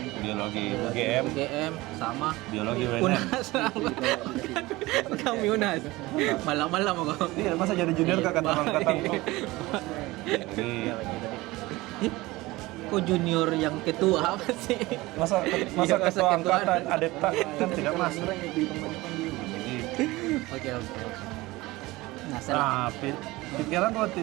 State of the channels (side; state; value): left; quieter; 20.2 dB